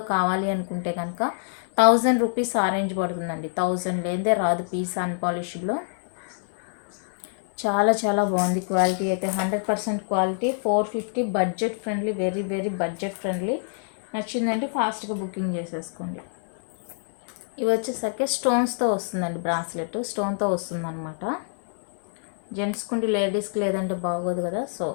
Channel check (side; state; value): right; silent; 61 dB below the other